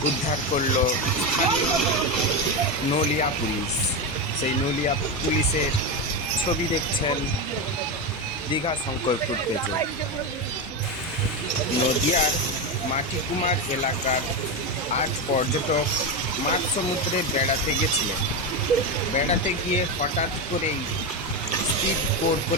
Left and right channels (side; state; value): both; normal; correlation 0.13